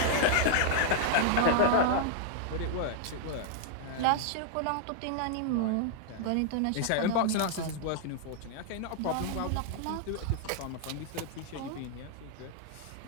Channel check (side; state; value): both; different; correlation 0.00